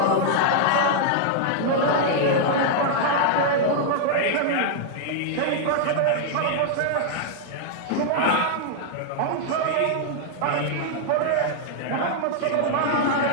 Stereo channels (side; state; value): both; different; correlation -0.01